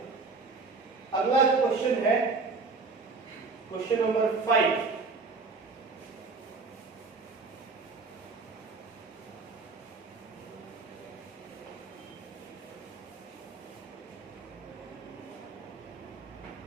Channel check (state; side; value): quieter; left; 4.2 dB